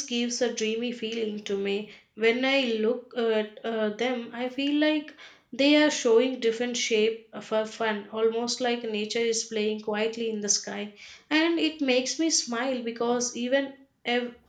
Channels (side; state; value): both; identical; correlation 1.00